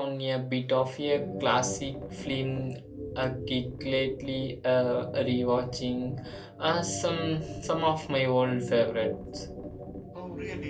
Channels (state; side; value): identical; both; correlation 1.00